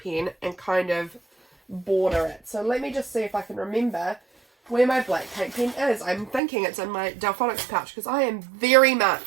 and kind of border it. So let me just see if I can remember where my black paint pen is. I'm thinking it's in my Delphonics pouch because I am very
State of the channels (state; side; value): drops out; left; at 6.4 s